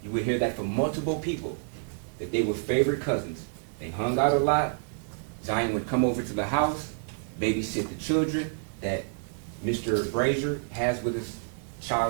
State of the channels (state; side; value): silent; left; 59 dB below the other